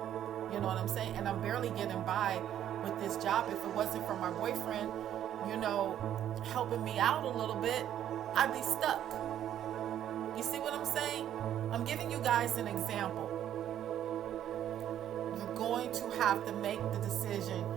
You know what I'm saying? And I'm barely getting by with this job. If it wasn't for my boyfriend, helping me out a little bit, I'd be stuck. You see what I'm saying? I'm giving you guys an example. You're going to have to make the decision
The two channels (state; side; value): quieter; left; 10.8 dB